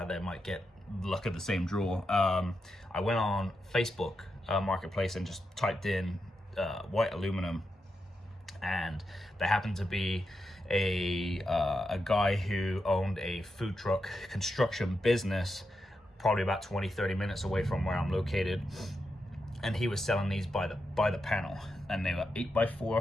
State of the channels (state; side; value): normal; both; correlation 0.86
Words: there might get luck of the same draw. I went on Facebook Marketplace and just typed in white aluminum, and there happened to be a guy who owned a food truck construction business probably about 20-30 minutes away from where I'm located, and he was selling these by the panel, and they were